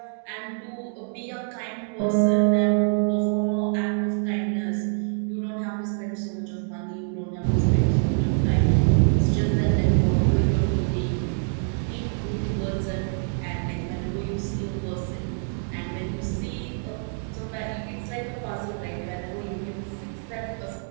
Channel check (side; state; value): left; silent; digital silence